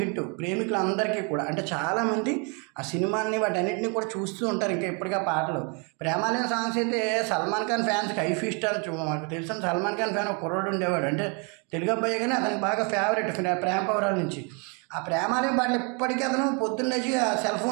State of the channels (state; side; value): quieter; left; 34.7 dB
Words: ప్రేమికులందరికీ కూడా. అంటే చాలామంది ఆ సినిమాని వాటన్నిటిని కూడా చూస్తూ ఉంటారు ఇంకా ఇప్పటికీ ఆ పాటలు. ప్రేమాలయం సాంగ్స్ అయితే సల్మాన్ ఖాన్ ఫ్యాన్స్కి హై ఫీస్ట్ అని మాకు తెలిసిన సల్మాన్ ఖాన్ ఫ్యాన్ ఒక కుర్రోడు ఉండేవాడు, అంటే తెలుగు అబ్బాయి కానీ అతనికి బాగా ఫేవరెట్ ప్రేమ పౌరాల నుంచి. ఆ ప్రేమాలయం పాటలు ఇప్పటికీ అతను పొద్దున్న లేచి ఆ సెల్